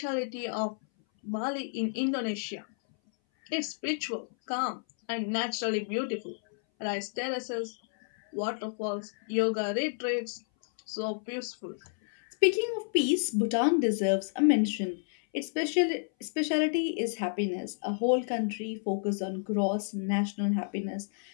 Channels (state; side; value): silent; right; 58 dB below the other